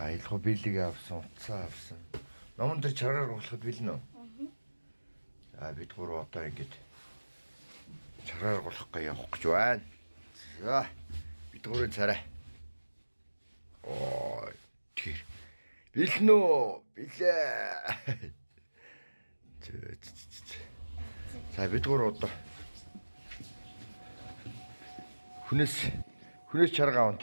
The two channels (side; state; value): both; inverted; correlation -1.00